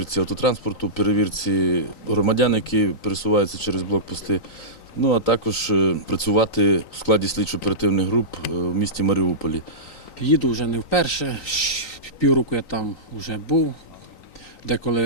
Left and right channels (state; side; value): late; right; 3.9 ms